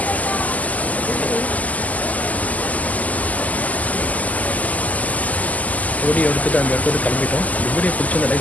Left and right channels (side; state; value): right; late; 0.076 ms